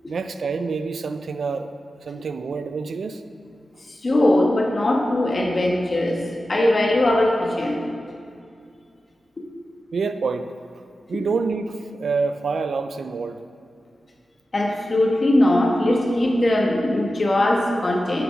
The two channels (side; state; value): both; normal; correlation 0.92